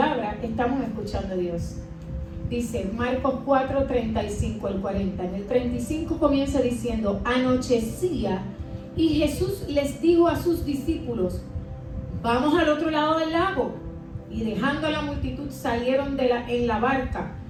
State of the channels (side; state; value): both; identical; correlation 1.00